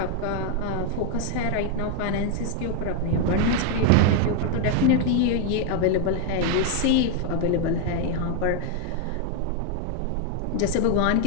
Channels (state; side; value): different; both; correlation 0.00